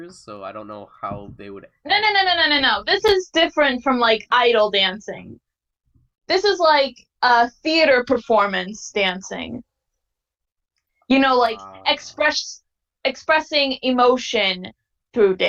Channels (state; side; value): identical; both; correlation 1.00